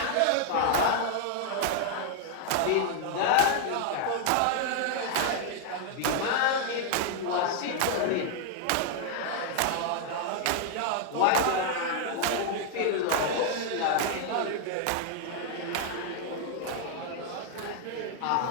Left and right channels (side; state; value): both; different; correlation 0.00